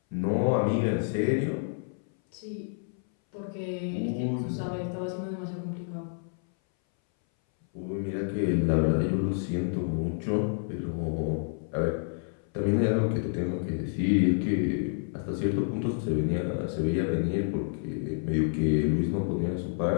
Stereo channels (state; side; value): silent; right; 59 dB below the other